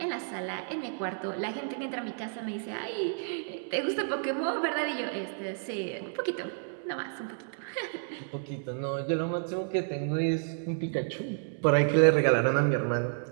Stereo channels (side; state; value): left; silent; 57 dB below the other